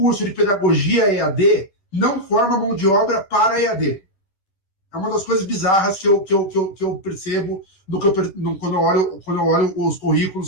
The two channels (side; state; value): right; late; 10 ms